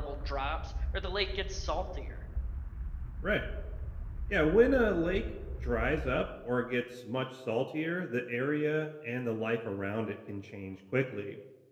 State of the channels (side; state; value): both; identical; correlation 1.00